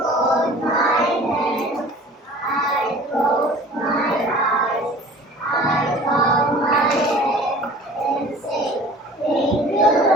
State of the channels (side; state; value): both; normal; correlation 0.45